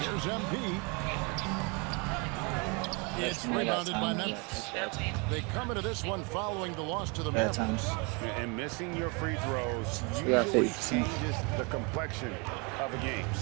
Here's MP. It's rebounded by Memphis. They come into this one following the loss to the Bad Mavericks. times. And missing your free throws We got usually 50%. changes the complexion of a game.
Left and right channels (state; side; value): quieter; left; 31.1 dB